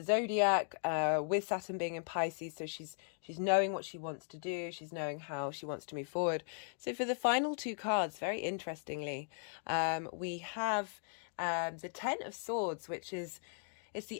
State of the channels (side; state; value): right; silent; digital silence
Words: zodiac with Saturn being in Pisces. So she's knowing what she wants to do. She's knowing how she wants to move forward. So for the final two cards, very interestingly, we have the Ten of Swords, which is, it's